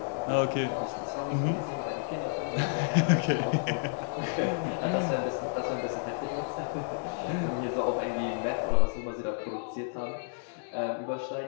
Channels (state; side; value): silent; right; digital silence